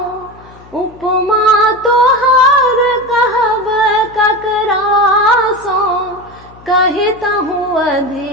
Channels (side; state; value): left; noise; hum, 23 dB below the sound